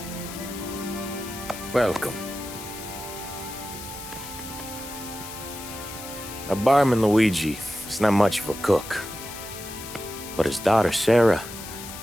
Welcome. Now, barman Luigi is not much of a cook. But his daughter, Sarah,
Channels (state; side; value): noise; left; hiss, 12 dB below the sound